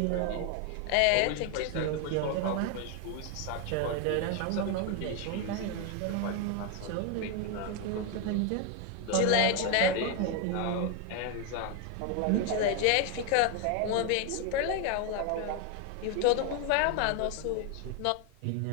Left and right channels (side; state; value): both; different; correlation 0.01